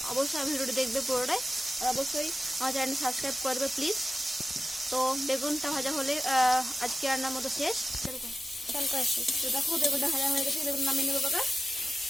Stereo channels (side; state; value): both; normal; correlation 0.93